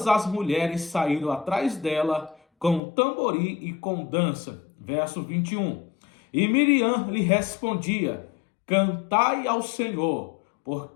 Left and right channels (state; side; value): drops out; right; at 2.8 s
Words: as mulheres saíram atrás dela com tamboril e com dança. Verso 21. E Miriam lhe respondia: Cantai ao Senhor,